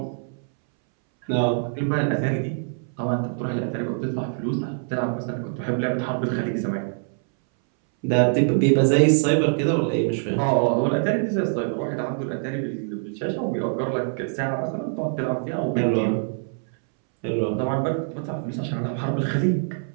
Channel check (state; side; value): silent; left; 62 dB below the other